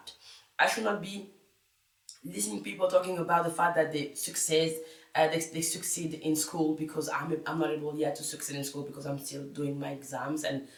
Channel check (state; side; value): identical; both; correlation 1.00